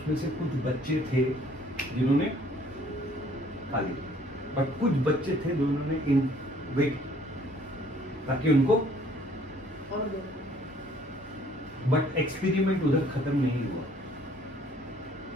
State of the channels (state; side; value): normal; both; correlation 0.59